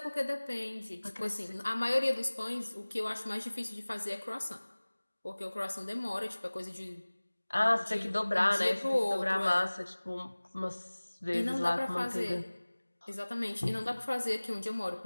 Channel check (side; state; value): both; inverted; correlation -1.00